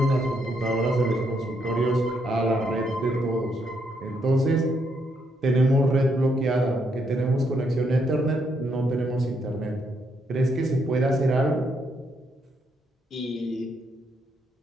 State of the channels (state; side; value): normal; both; correlation 0.76